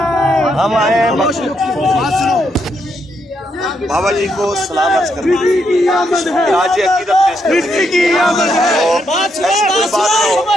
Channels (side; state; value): both; normal; correlation 0.78